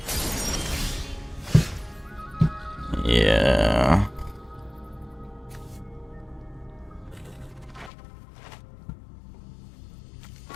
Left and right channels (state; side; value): drops out; right; at 7.9 s